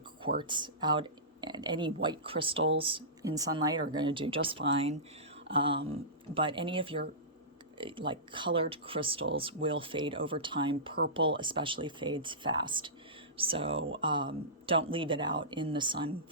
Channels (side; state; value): both; normal; correlation -0.20